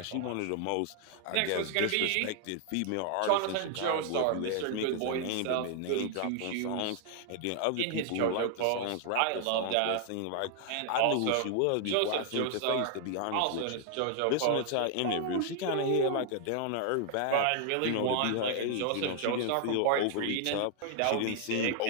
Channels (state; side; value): different; both; correlation 0.00